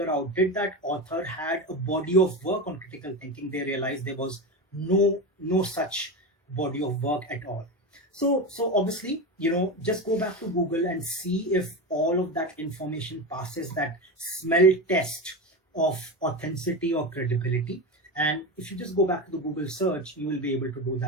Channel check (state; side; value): normal; both; correlation 0.20